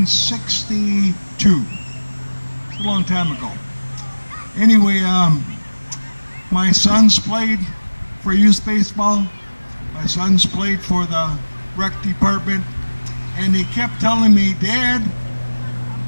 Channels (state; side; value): inverted; both; correlation -1.00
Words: It's a long time ago. Anyway, my sons played for youth baseball. My sons played for the rec department, and he kept telling me, Dad,